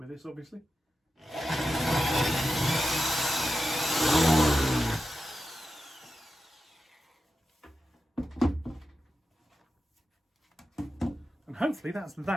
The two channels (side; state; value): both; normal; correlation 0.90